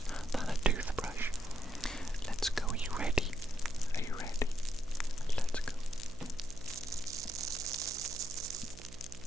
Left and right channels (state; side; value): noise; right; hum, 16 dB below the sound